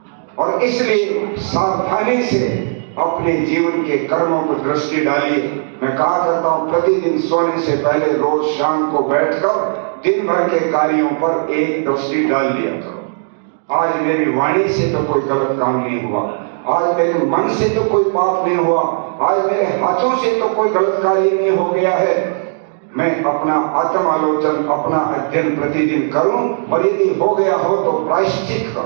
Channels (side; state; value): left; silent; digital silence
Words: और इसलिए सावधानी से अपने जीवन के कर्मों पर दृष्टि डालिए। मैं कहा करता हूं, प्रतिदिन सोने से पहले रोज शाम को बैठकर दिन भर के कार्यों पर एक दृष्टि डाल दिया करो। आज मेरी वाणी से तो कोई गलत काम नहीं हुआ, आज मेरे मन से तो कोई पाप नहीं हुआ, आज मेरे हाथों से तो कोई गलत कार्य नहीं हो गया है। मैं अपना आत्म आलोचन, अपना अध्ययन प्रतिदिन करूं, और यदि हो गया हो तो प्रायश्चित